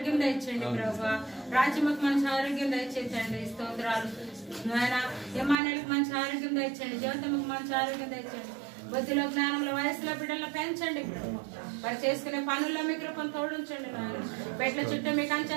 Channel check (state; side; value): drops out; left; at 5.6 s